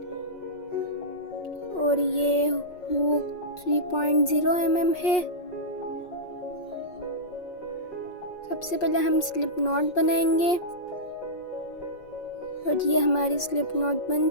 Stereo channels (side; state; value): right; late; 5.5 ms